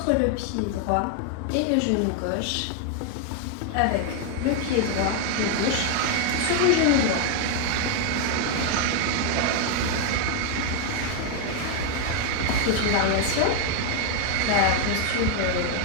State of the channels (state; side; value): different; both; correlation 0.00